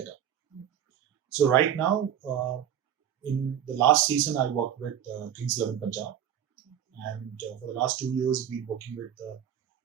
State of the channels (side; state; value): left; quieter; 9.7 dB